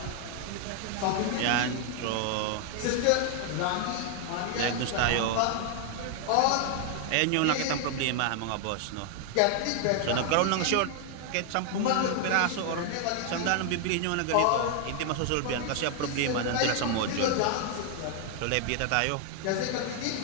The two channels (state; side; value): different; both; correlation 0.00